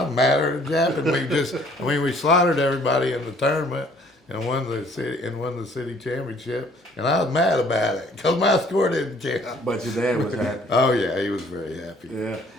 was madder than Jap, we slaughtered everybody in the tournament and won the city championship. And I was mad about it because my score didn't count. But your dad was happy. Oh yeah, he was very happy. Yeah.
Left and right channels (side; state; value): both; normal; correlation 0.58